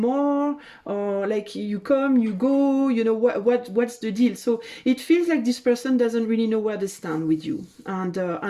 or like you come, you go, you know, what's the deal? So it feels like this person doesn't really know where they stand with you, and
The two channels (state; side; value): identical; both; correlation 1.00